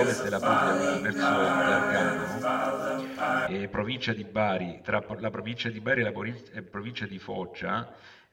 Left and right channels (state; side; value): identical; both; correlation 1.00